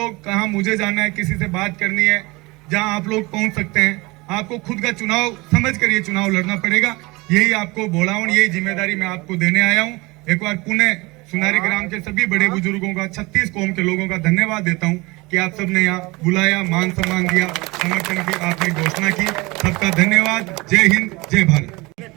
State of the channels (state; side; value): quieter; left; 23.6 dB